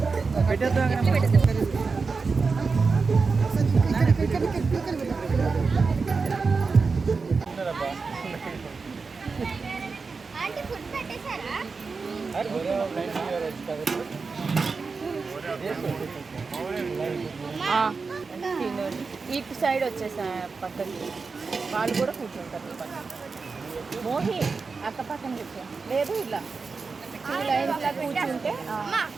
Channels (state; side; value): quieter; left; 4.6 dB